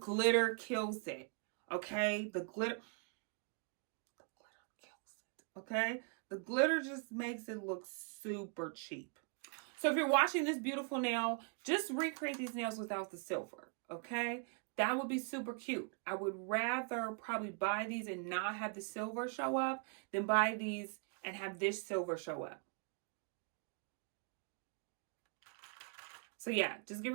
kills it. Okay, the glitter kills it. Okay, the glitter just makes it look super cheap. So if you're watching this beautiful nail, just recreate these nails without the silver, okay? That would be super cute. I would rather probably buy these and not have the silver show up than buy these and have this silver show up. So yeah, just get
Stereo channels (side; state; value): left; quieter; 38.3 dB